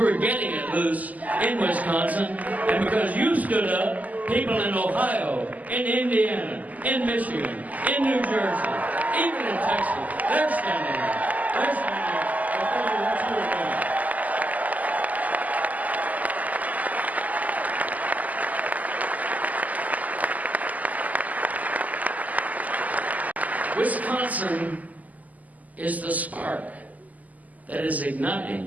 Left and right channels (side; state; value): left; late; 0.077 ms